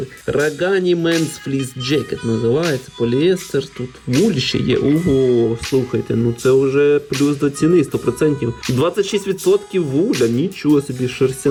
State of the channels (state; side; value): identical; both; correlation 1.00